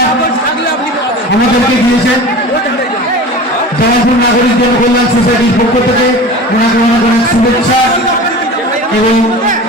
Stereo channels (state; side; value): normal; both; correlation 0.35